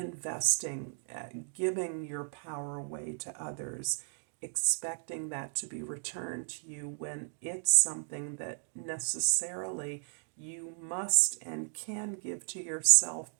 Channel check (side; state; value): left; silent; digital silence